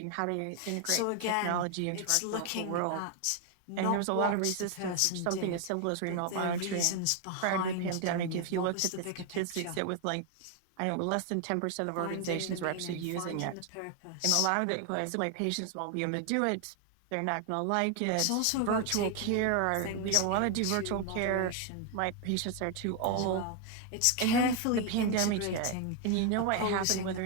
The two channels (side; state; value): both; different; correlation 0.01